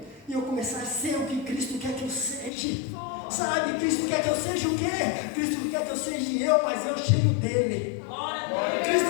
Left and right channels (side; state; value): right; drops out; at 2.5 s